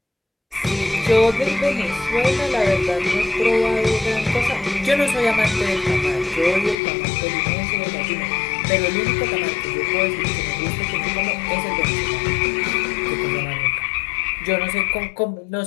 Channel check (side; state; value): right; drops out; at 6.8 s